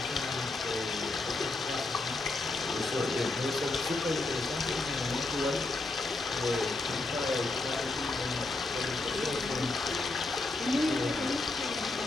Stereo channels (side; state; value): right; quieter; 3.2 dB